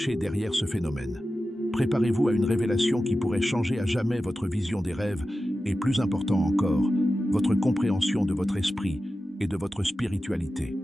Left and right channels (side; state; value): both; normal; correlation 0.93